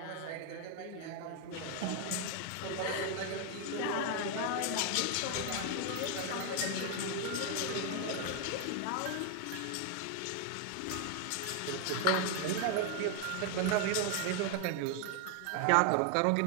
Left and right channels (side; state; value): both; different; correlation 0.00